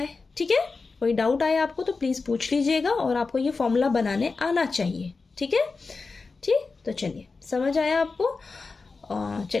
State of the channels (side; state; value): right; quieter; 4.2 dB